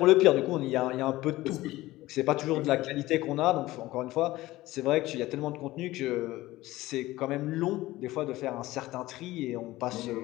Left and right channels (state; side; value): quieter; right; 17.6 dB